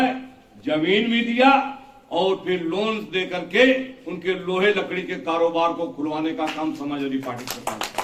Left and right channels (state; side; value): identical; both; correlation 1.00